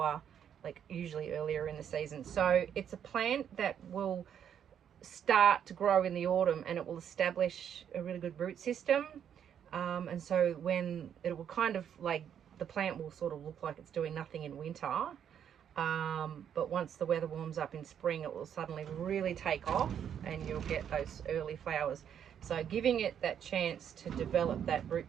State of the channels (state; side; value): quieter; left; 8.9 dB